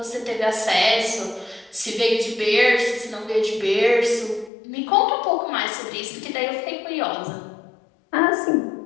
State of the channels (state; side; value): drops out; right; at 4.5 s